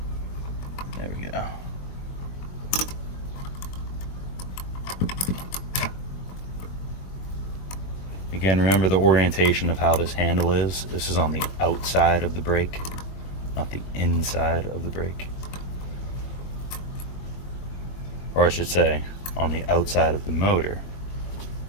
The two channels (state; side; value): late; right; 21 ms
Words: There we go. Again, remember the orientation of how this handle is. This is on the outside of the brake, not the inside of the brake. Or I should say, on the outside of the motor,